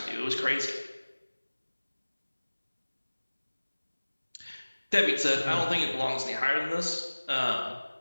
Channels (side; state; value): both; inverted; correlation -1.00